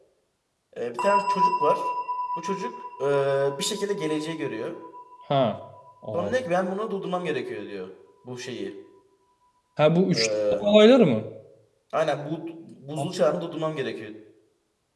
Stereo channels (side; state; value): both; identical; correlation 1.00